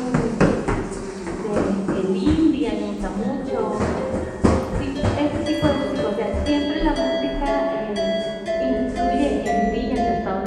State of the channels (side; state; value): both; identical; correlation 1.00